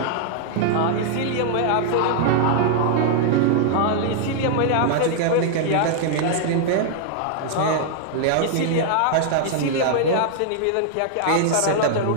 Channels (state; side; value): different; both; correlation -0.01